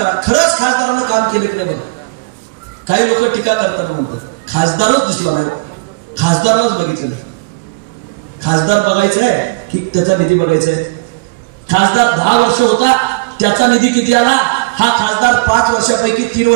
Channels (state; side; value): quieter; left; 27.6 dB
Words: खरंच खासदारानं काम केले की नाही? काही लोक टीका करताना म्हणतात खासदारच दिसला नाही, खासदारालाच बघितलं नाही. खासदार बघायचा आहे की त्याचा निधी बघायचा आहे? खासदार 10 वर्ष होता, त्याचा निधी किती आला? हा खासदार 5 वर्षापैकी 3